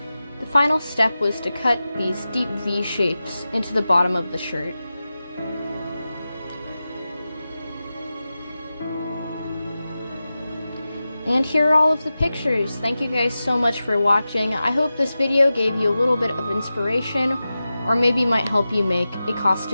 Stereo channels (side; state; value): both; inverted; correlation -0.93